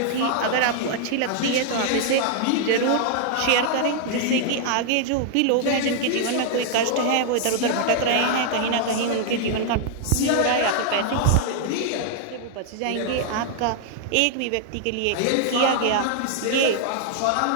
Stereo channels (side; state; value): both; different; correlation 0.00